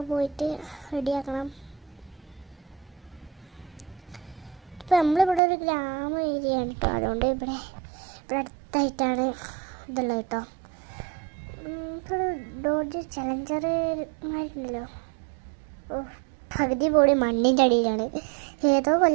പോയിട്ട് റെഡിയാക്കണം. ഇപ്പം നമ്മളിവിടെ ഒരു ഗ്രാമ ഏരിയയാണ് കേട്ടോ. അതുകൊണ്ട് ഇവിടെ അടുത്തായിട്ടാണ് ഇതുള്ളത് കേട്ടോ. ഇപ്പോൾ ഡോഡ്ജ് ചലഞ്ചർമാരുണ്ടല്ലോ. ഓ, പകുതി പോടി മണ്ണിൻ്റെ അടിയിലാണ്. ഏതോ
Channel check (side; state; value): left; drops out; at 5.4 s